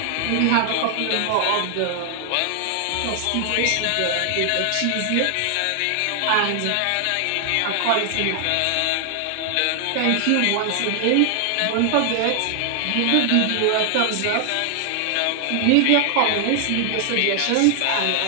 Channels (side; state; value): both; different; correlation 0.00